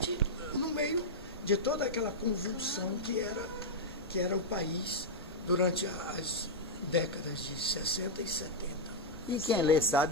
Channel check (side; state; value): both; normal; correlation -0.04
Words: no meio de toda aquela convulsão que era o país durante as décadas de 60 e 70. E quem lê sabe